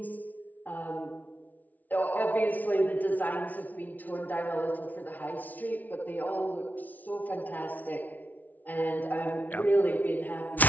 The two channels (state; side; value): late; right; 0.078 ms